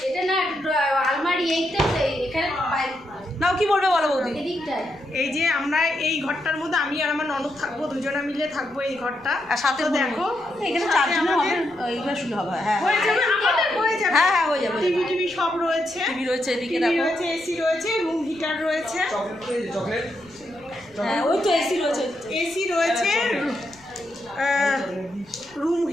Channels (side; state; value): left; noise; rumble, 28 dB below the sound